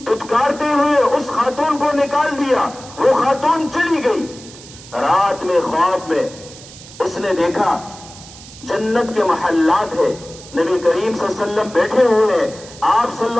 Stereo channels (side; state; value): right; noise; hiss, 18 dB below the sound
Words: دھتکارتے ہوئے اس خاتون کو نکال دیا۔ وہ خاتون چلی گئی۔ رات میں خواب میں اس نے دیکھا جنت کے محلات ہے، نبی کریم صلی اللہ علیہ وسلم بیٹھے ہوئے ہیں، آپ صلی